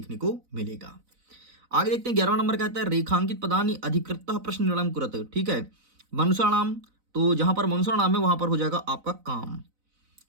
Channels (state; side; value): late; left; 4.0 ms